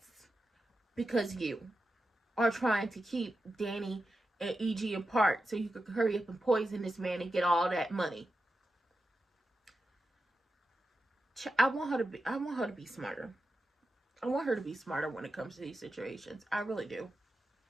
Because you are trying to keep Danny and EG apart so you could hurry up and poison this man and get all that money. I want her to be smarter. I want her to be smarter when it comes to these situations. I really do.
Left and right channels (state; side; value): normal; both; correlation 0.90